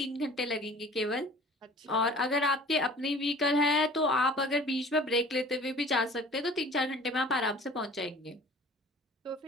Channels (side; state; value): both; normal; correlation 0.46